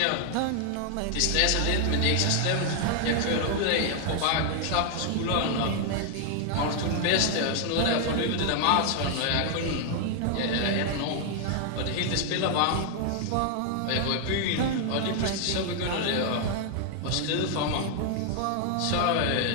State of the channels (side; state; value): both; different; correlation 0.00